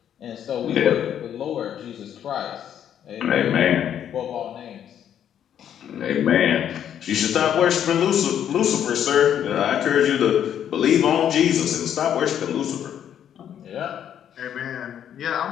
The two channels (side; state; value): right; quieter; 9.6 dB